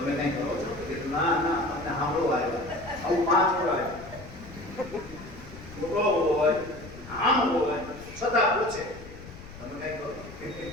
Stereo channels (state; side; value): noise; left; rumble, 16 dB below the sound